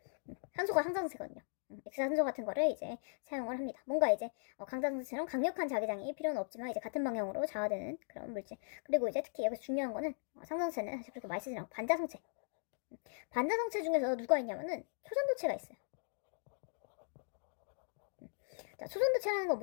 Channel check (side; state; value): right; silent; digital silence